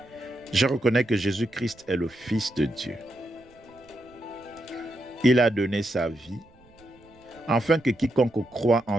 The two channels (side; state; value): right; noise; rumble, 28 dB below the sound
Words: Je reconnais que Jésus-Christ est le Fils de Dieu. Il a donné sa vie, afin que quiconque croit